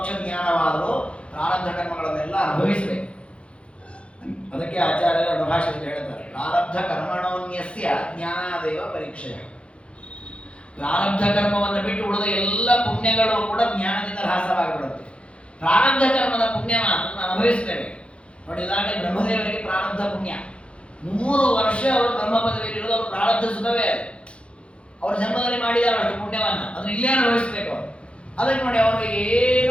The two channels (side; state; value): right; late; 0.060 ms